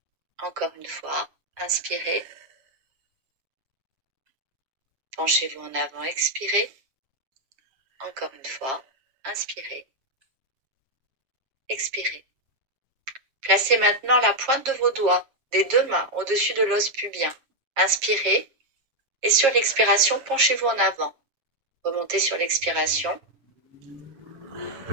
Encore une fois, inspirez. Penchez-vous en avant, expirez. Encore une fois, inspirez. Expirez. Placez maintenant la pointe de vos doigts des deux mains au-dessus de l'os pubien. Inspirez et sur l'expiration, penchez-vous en avant. Remontez sur l'expiration.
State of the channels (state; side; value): late; left; 7.5 ms